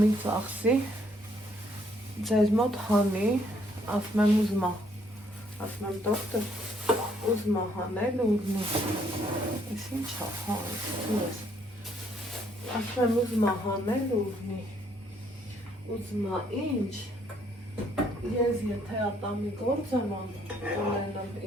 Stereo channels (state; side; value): normal; both; correlation 0.68